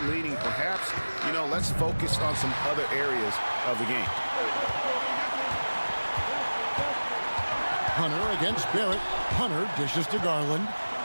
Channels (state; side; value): inverted; both; correlation -1.00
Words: leading, perhaps, let's focus on some other areas of the game. Hunter against Barrett. Hunter dishes to Garland.